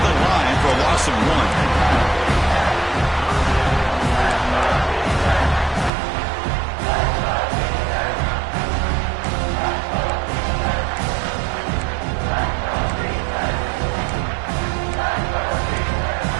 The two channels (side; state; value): left; drops out; at 5.9 s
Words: the line for a loss of 1.